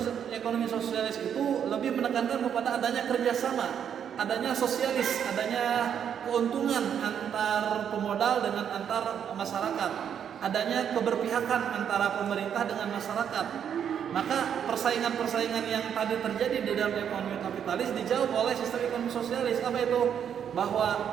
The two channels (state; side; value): quieter; left; 8.5 dB